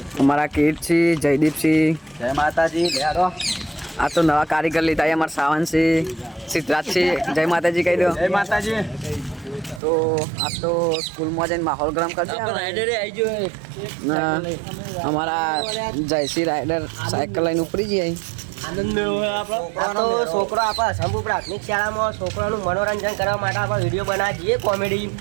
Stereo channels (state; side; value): drops out; left; at 9.8 s